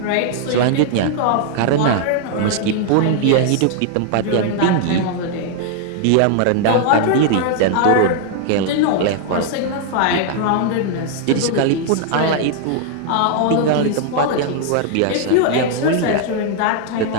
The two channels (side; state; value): both; different; correlation 0.00